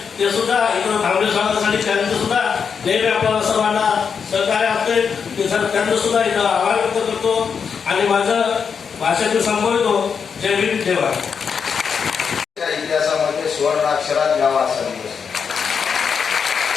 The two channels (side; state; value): right; quieter; 6.4 dB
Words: ते सुद्धा इकडं थांबले स्वागतासाठी त्यांचं सुद्धा नेहमी आपल्याला सर्वांना सहकार्य असते. ते सर त्यांचं सुद्धा इथं आभार व्यक्त करतो आणि माझं भाषण मी संपवतो. जय भीम जय भारत. इतिहासामध्ये सुवर्ण अक्षरात गावा असा दिवस